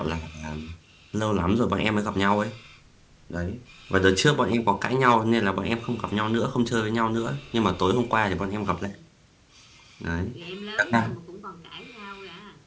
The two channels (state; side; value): identical; both; correlation 1.00